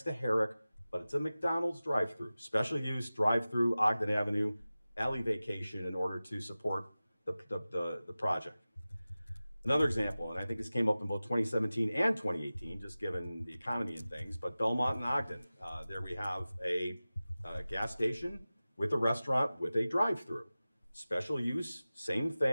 to Herrick, but it's a McDonald's drive-through, special use drive-through Ogden Avenue, alley vacation in order to support the project. Another example, and I think this came up in both 2017 and 2018, just given the economy and things, but Belmont and Ogden, there we have a gas station with a restaurant with a drive-through. Special use, same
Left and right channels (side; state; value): both; inverted; correlation -0.97